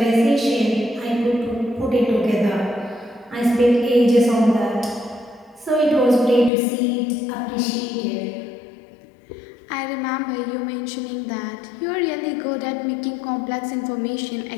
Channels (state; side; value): drops out; right; at 6.5 s